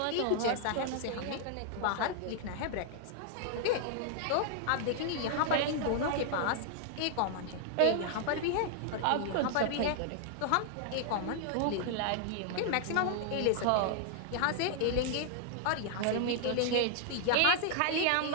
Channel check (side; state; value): both; different; correlation 0.00